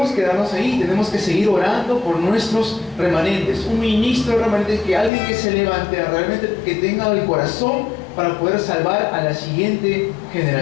quedarnos ahí, tenemos que seguir orando por nuestros remanentes. Un ministro de remanentes, que alguien que se levante, realmente que tenga el corazón para poder salvar a la siguiente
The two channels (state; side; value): drops out; right; at 5.1 s